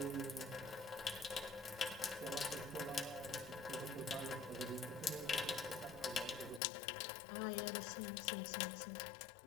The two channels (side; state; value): right; drops out; at 6.6 s